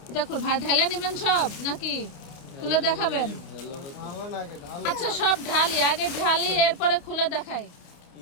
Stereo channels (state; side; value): late; right; 29 ms